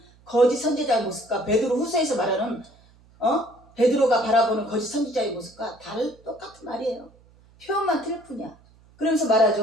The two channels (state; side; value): noise; right; hum, 29 dB below the sound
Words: 거짓 선지자의 모습과 베드로 후서에서 말하는 베드로가 바라보는 거짓 선지자의 모습과 똑같은 말이에요. 표현만 틀릴 뿐이야. 그러면서